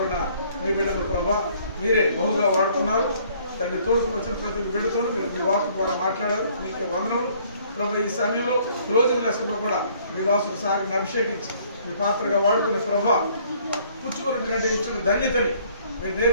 మీ బిడ్డను ప్రభావ మీరే బహుగా వాడుతున్నారు. తండ్రి తోడుకు వచ్చిన ప్రతి బిడ్డతో మీరు మీ వాకు ద్వారా మాట్లాడారు. మీకు వందనములు ప్రభావ. ఈ సమయంలో క్లోజింగ్ లెసన్లో కూడా మీ దాసుడు సాగర్ని అభిషేకించి మీ పాత్రగా వాడుకునే ప్రభావ పుచ్చుకున్నటువంటి ఇచ్చిన ధన్యతని మీరు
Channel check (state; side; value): inverted; both; correlation -0.61